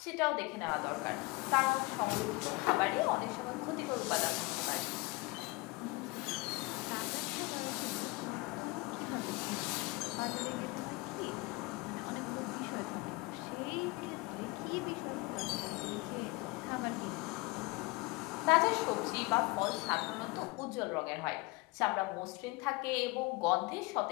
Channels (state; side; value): quieter; right; 24.2 dB